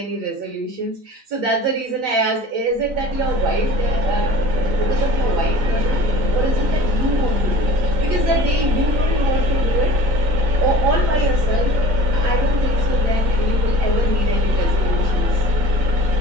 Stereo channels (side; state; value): left; late; 3.9 ms